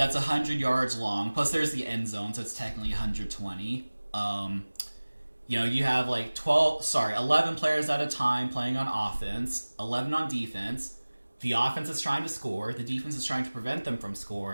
100 yards long, plus there's the end zone, so it's technically 120. You have, like, 11 players at a time playing on offense, 11 on defense. The offense is trying to score. The defense is trying to prevent them from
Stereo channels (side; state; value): both; inverted; correlation -1.00